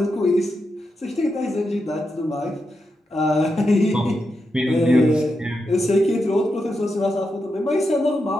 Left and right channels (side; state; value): both; normal; correlation 0.86